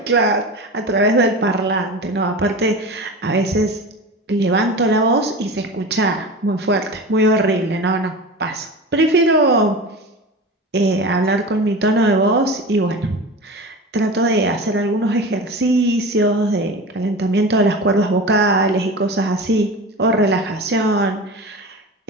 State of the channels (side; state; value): both; normal; correlation 0.30